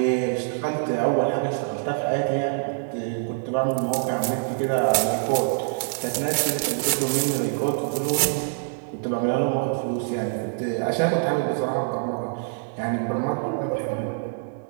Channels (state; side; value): silent; left; digital silence